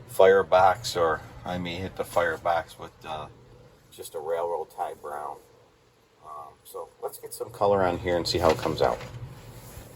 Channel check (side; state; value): both; identical; correlation 1.00